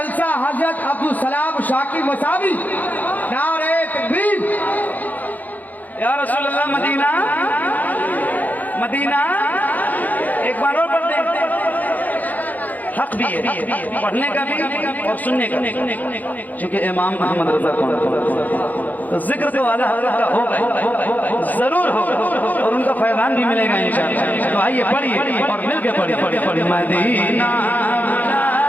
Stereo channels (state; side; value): late; right; 0.082 ms